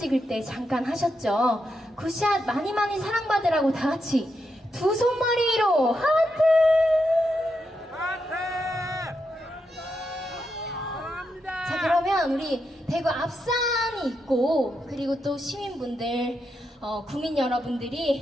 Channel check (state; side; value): normal; both; correlation 0.84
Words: 때 잠깐 하셨죠? 굿샷 많이 많이 사랑받으라고 다 같이 두 손머리로 하트! 자, 그러면 우리 대구 앞산이 있고, 그리고 또 시민분들, 국민